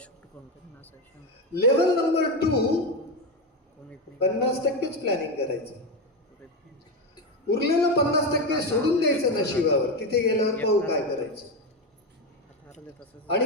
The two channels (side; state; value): both; normal; correlation 0.13